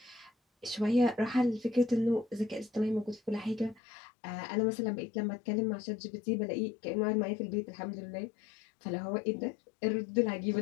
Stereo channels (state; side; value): drops out; right; at 3.8 s